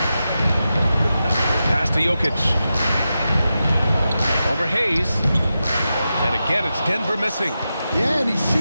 Pass to Jokic. Over Hayes. And again, it's Denver missing. Yeah, and he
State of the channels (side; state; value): both; inverted; correlation -0.90